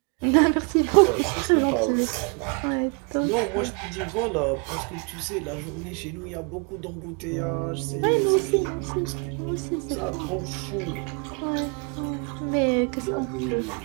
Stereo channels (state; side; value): quieter; left; 34.5 dB